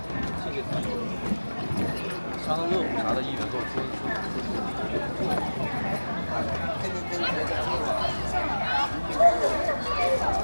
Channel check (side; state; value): both; inverted; correlation -1.00